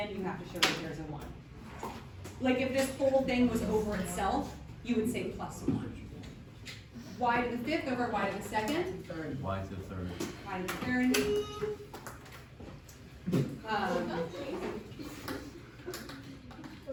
you have to show that there's a 1. Like if this whole thing was over itself, you would say plus 1. Y to the 5th over y to the 2nd. Y to the 3rd. Y to the 3rd.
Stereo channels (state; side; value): identical; both; correlation 1.00